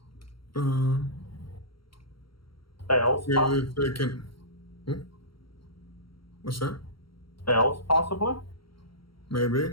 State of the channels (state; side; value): late; right; 0.74 ms